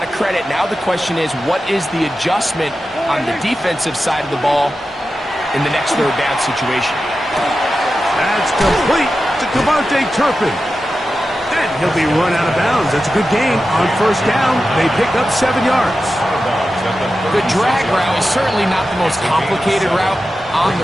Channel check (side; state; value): both; normal; correlation 0.92